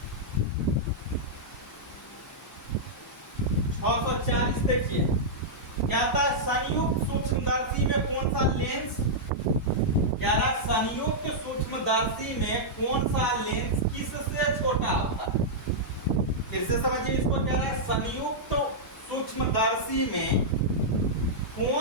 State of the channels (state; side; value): normal; both; correlation -0.09